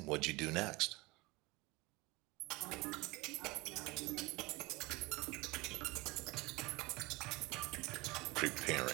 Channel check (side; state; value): left; quieter; 23.2 dB